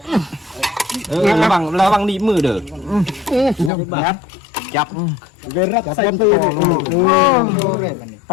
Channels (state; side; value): drops out; right; at 3.7 s